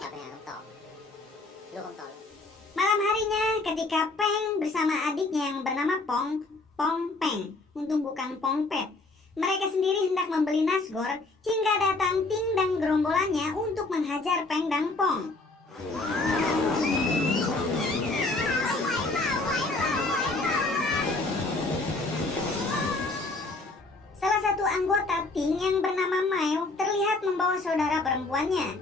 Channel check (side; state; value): right; quieter; 3.2 dB